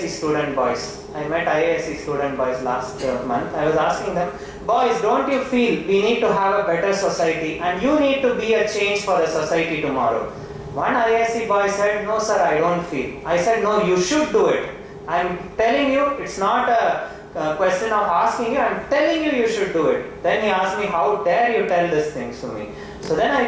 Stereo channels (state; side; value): identical; both; correlation 1.00